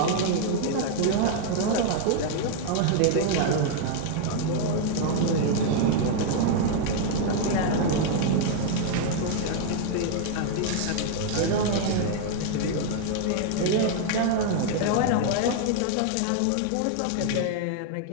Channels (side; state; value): both; different; correlation 0.00